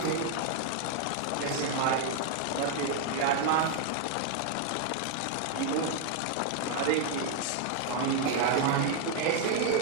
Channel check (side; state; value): both; different; correlation 0.00